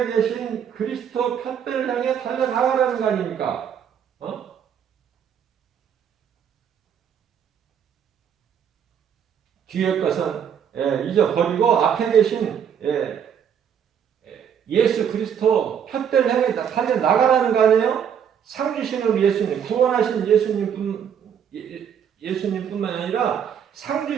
계신 그리스도 푯배를 향해 달려나가라는 거 아닙니까? 뒤의 것은 잊어버리고 앞에 계신 예수 그리스도 푯배를 향해 달려나가라는 거 아니에요? 상 주시는 우리 예수님, 구원하신 예수님뿐만 아니라 상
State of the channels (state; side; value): quieter; left; 8.2 dB